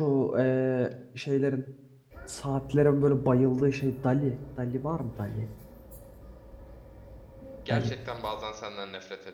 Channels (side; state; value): both; identical; correlation 1.00